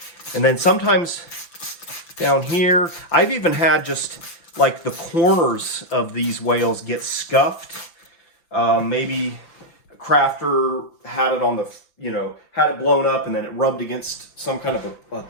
And then sometimes down here, I've even had just like the corners of these whales get scuffed. Maybe a crafter had it on the, had it blown up and then it rubbed against some kind of a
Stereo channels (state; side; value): late; right; 5.9 ms